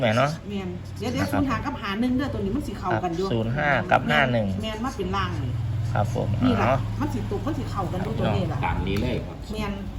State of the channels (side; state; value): both; identical; correlation 1.00